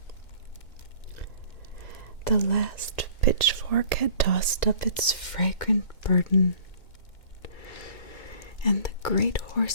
The last pitchfork had tossed up its fragrant burden, and the great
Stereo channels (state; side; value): late; right; 2.0 ms